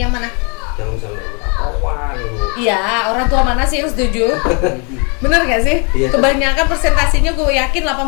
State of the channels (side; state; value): right; quieter; 34.4 dB